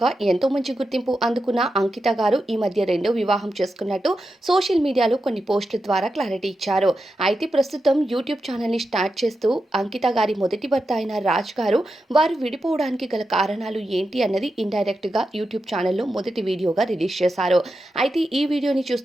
ఎంతో మంచి గుర్తింపు అందుకున్న అంకిత గారు ఈ మధ్య రెండో వివాహం చేసుకున్నట్టు సోషల్ మీడియాలో కొన్ని పోస్టుల ద్వారా క్లారిటీ ఇచ్చారు. అయితే ప్రస్తుతం యూట్యూబ్ ఛానెల్‌ని స్టార్ట్ చేస్తూ అంకిత గారి మొదటి భర్త అయిన రాజ్ గారు వారు విడిపోవడానికి గల కారణాలు ఏంటి అన్నది ఇండైరెక్ట్‌గా యూట్యూబ్ ఛానెల్‌లో మొదటి వీడియోగా రిలీజ్ చేశారు. అయితే ఈ వీడియోని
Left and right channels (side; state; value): both; normal; correlation 0.89